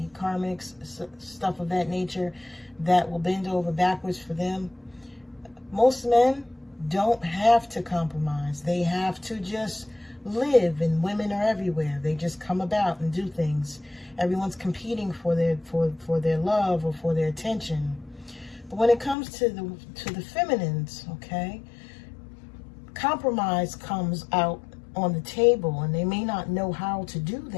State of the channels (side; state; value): right; drops out; at 19.2 s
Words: karmics, stuff of that nature that will bend over backwards for them. Most men don't have to compromise. They have to just live, and women are everywhere. They just come about and do things. Everyone's competing for their love or for their attention. But when it comes to the feminines, okay, compromise comes out on the table, and they may not know how to do